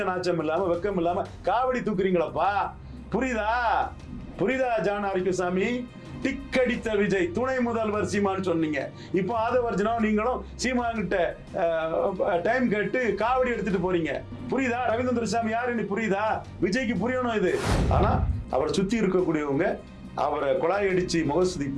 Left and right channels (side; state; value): both; identical; correlation 1.00